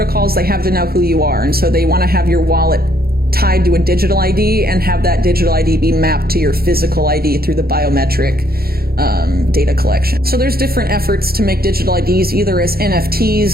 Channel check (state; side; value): late; left; 0.44 ms